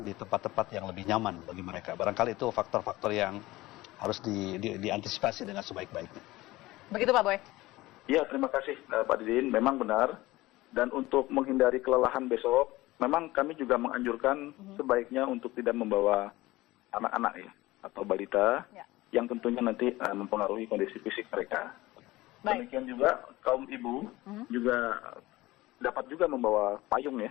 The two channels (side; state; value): right; quieter; 18.7 dB